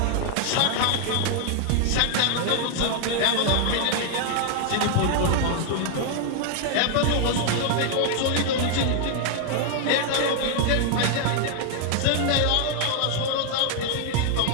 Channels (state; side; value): different; both; correlation 0.00